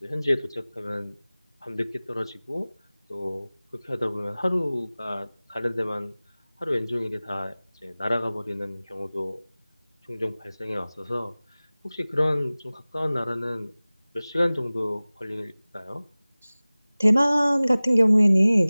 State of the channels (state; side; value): inverted; both; correlation -0.99